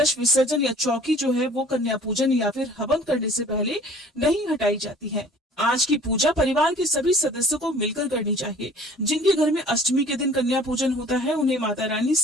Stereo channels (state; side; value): normal; both; correlation 0.50